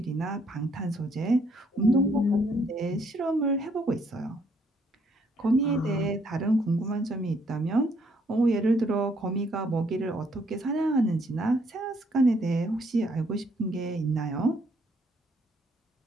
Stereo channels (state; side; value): normal; both; correlation 0.69